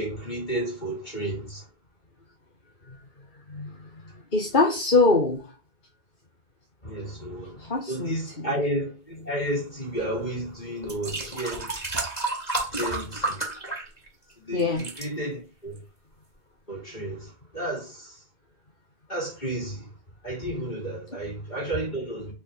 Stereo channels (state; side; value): late; right; 2.0 ms